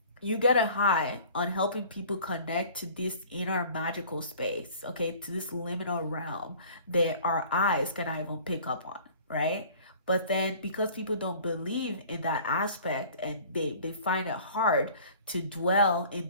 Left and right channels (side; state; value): both; inverted; correlation -0.48